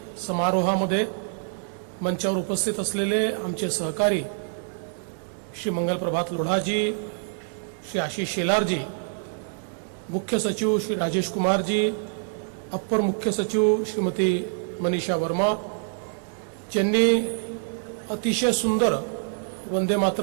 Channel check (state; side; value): silent; left; 58 dB below the other